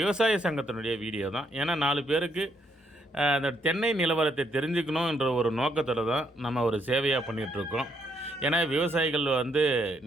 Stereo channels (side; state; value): both; normal; correlation 0.74